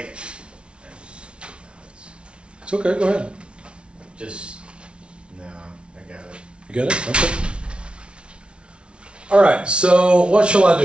It's okay, go ahead. just no, I got it. You get it? Okay. All right, so what shall I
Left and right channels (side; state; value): left; late; 0.058 ms